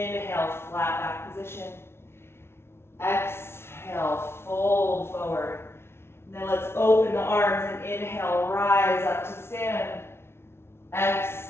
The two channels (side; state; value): right; late; 0.12 ms